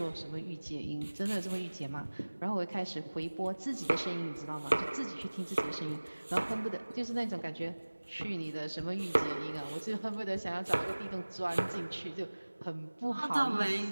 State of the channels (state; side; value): inverted; both; correlation -1.00